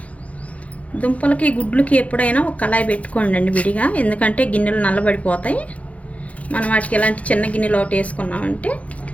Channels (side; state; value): right; late; 0.066 ms